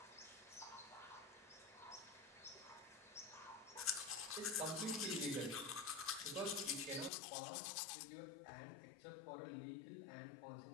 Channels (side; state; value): right; drops out; at 7.1 s